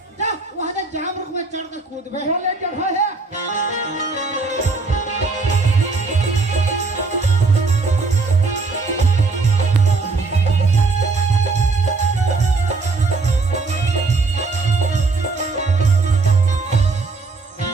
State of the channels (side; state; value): left; quieter; 4.0 dB